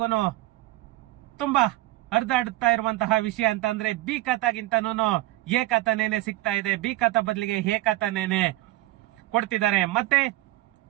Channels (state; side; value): quieter; left; 17.3 dB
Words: ತುಂಬಾ ಹರಿದಾಡುತ್ತಾ ಇರುವಂತಹ ವಿಷಯ ಅಂತ ಅಂದ್ರೆ ಬಿ ಖಾತಾಗಿಂತನೂ ಎ ಖಾತಾನೇನೆ ಸಿಗ್ತಾ ಇದೆ. ಬಿ ಖಾತಾ ಬದಲಿಗೆ ಎ ಖಾತಾನೇನೆ ಕೊಡ್ತಿದ್ದಾರೆ. ಮತ್ತೆ